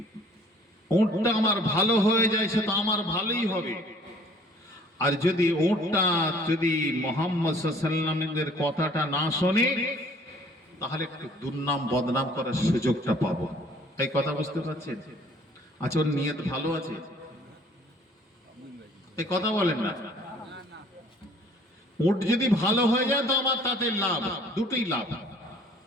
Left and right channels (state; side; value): normal; both; correlation 0.55